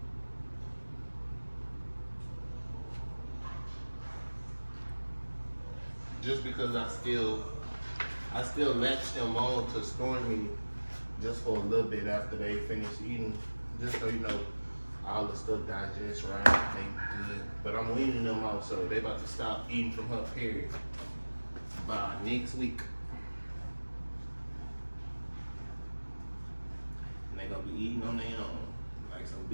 Just because I still latch them on to store me just for a little bit after they finish eating, just so you know all the stuff digests right, they good. But I'm weaning them out, so they about to stop eating from her period by next week. And they gonna be eating on their own, like some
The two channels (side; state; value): both; inverted; correlation -1.00